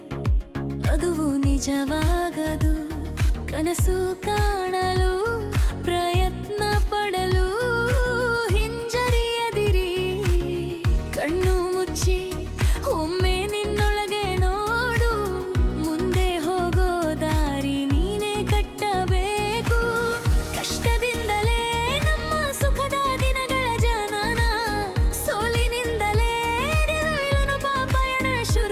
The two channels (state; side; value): identical; both; correlation 1.00